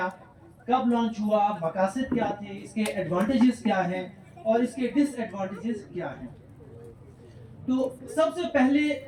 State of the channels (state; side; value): identical; both; correlation 1.00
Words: کب لانچ ہوا, مقاصد کیا تھے, اس کے ایڈوانٹیجز کیا ہیں اور اس کے ڈس ایڈوانٹیجز کیا ہیں. تو سب سے پہلے